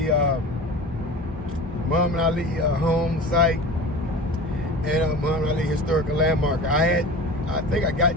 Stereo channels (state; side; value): normal; both; correlation 0.35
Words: Muhammad Ali home site and Muhammad Ali historical landmark. I think I